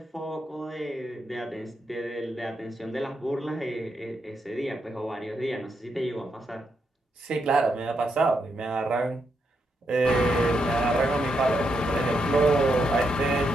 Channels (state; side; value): normal; both; correlation 0.81